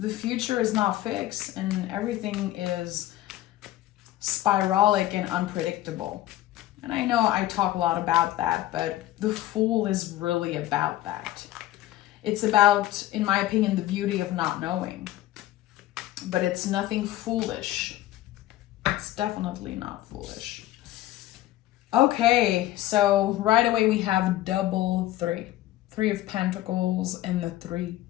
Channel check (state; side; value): quieter; right; 14.9 dB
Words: future is not fixed and everything is spiralic and unpredictable. And I know I talk a lot about that, but the Fool is really about that. It's about, in my opinion, the beauty of not knowing. But it's nothing foolish. It's definitely not foolish. Okay, so right away we have double three. Three of Pentacles and the Three